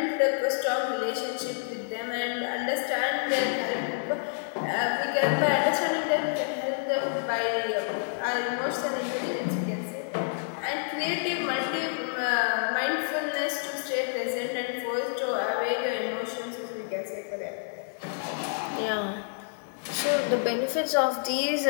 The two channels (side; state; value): right; silent; digital silence